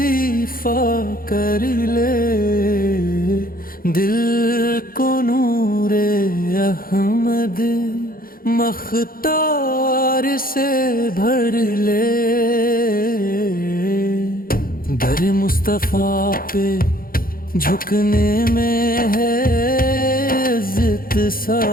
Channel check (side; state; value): right; late; 0.42 ms